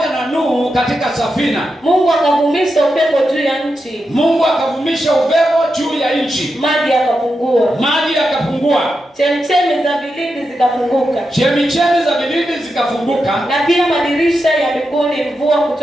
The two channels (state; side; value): normal; both; correlation 0.88